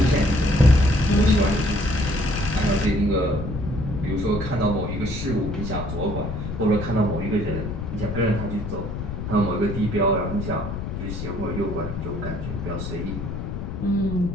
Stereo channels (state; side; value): noise; left; rumble, 5 dB below the sound